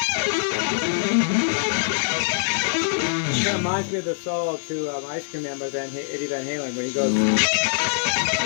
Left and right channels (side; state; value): right; silent; digital silence